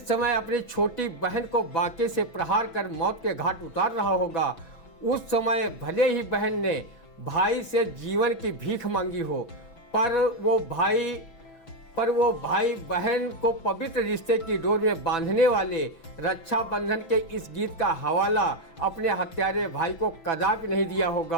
समय अपनी छोटी बहन को बांके से प्रहार कर मौत के घाट उतार रहा होगा, उस समय भले ही बहन ने भाई से जीवन की भीख मांगी हो, पर वो भाई पर वो भाई बहन को पवित्र रिश्ते की डोर में बांधने वाले रक्षाबंधन के इस गीत का हवाला अपने हत्यारे भाई को कदापि नहीं दिया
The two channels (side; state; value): right; late; 6.0 ms